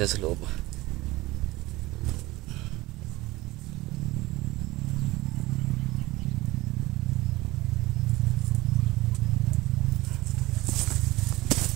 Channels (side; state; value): left; quieter; 19.6 dB